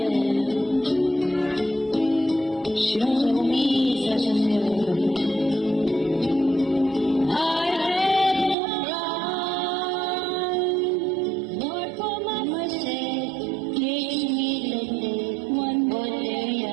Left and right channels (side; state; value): left; drops out; at 8.6 s